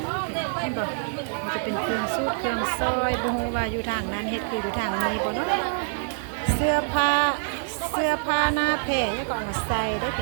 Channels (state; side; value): silent; left; 61 dB below the other